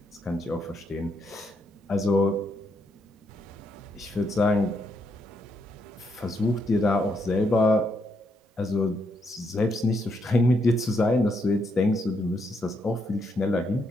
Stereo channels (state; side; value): normal; both; correlation 0.77